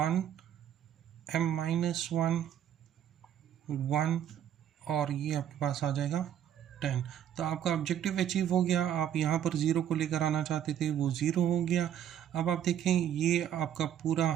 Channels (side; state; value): left; quieter; 10.0 dB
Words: m-1, 1 और ये आपके पास आ जाएगा 10। तो आपका ऑब्जेक्टिव अचीव हो गया। आप यहाँ पर 0 को लेकर आना चाहते थे, वो 0 हो गया। अब आप देखें ये आपका पूरा